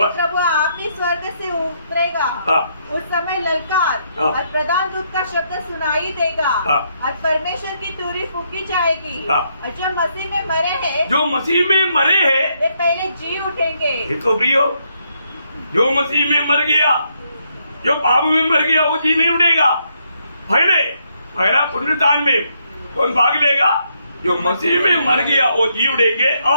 आप ही स्वर्ग से उतरेगा, उस समय ललकार और प्रधान दूत का शब्द सुनाई देगा और परमेश्वर की तुरही फूकी जाएगी और जो मसीह में मरे हैं, जो मसीह में मरे हैं, वे पहले जी उठेंगे। तो प्रियो, जो मसीह में मर गया, जो पाप में मर गया, वो जी नहीं उठेगा। पहला पुनरुत्थान में कौन भाग लेगा? जो मसीह में मर गया वो जी उठेंगे।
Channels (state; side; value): inverted; both; correlation -0.76